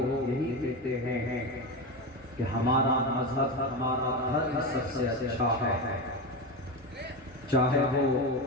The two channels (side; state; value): both; normal; correlation 0.18